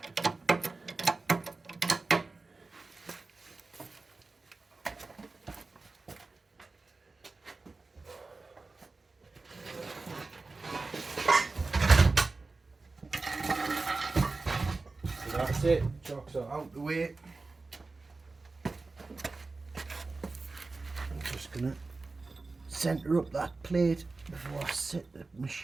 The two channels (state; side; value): quieter; left; 3.7 dB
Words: That's it, chocks are out the way. I'm just going to centre up that plate before I set the